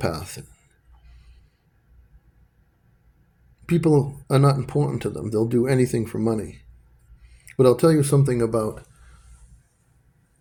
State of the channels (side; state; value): both; identical; correlation 1.00